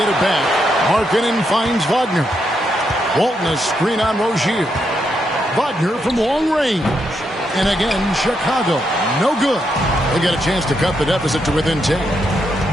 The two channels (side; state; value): both; normal; correlation 0.80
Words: it back. Markkanen finds Wagner. Walton a screen on Rozier. Wagner from long range. And again, Chicago, no good. They get a chance to cut the deficit to within 10.